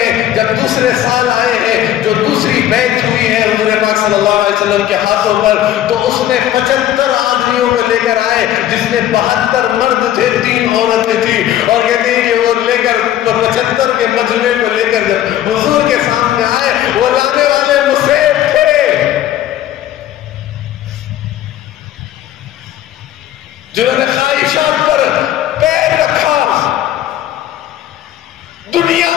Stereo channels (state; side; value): quieter; right; 12.2 dB